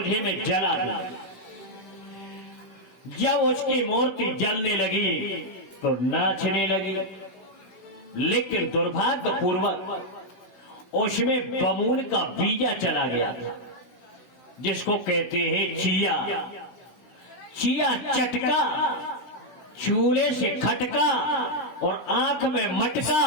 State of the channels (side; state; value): right; late; 16 ms